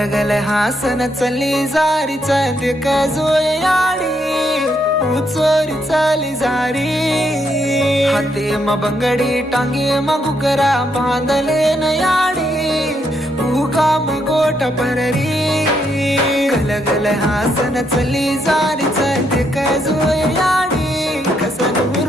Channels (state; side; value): normal; both; correlation 0.76